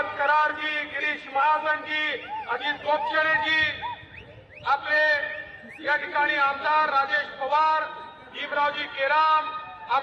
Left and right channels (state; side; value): identical; both; correlation 1.00